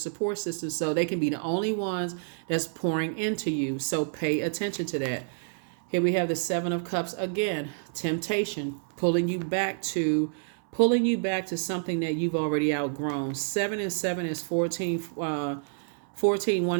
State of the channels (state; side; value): silent; left; 59 dB below the other